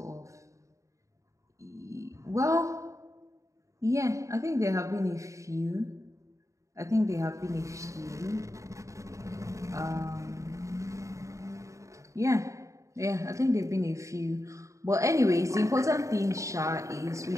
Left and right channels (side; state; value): left; late; 0.15 ms